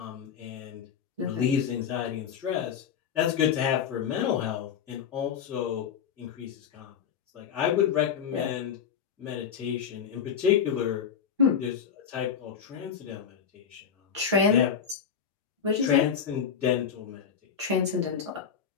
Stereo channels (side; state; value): right; quieter; 7.6 dB